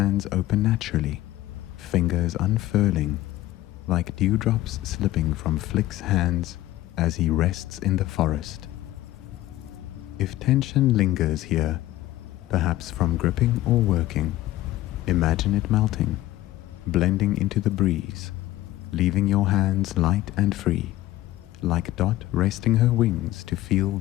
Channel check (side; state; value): right; quieter; 15.6 dB